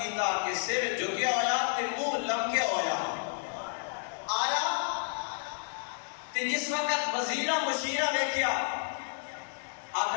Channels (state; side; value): silent; right; 57 dB below the other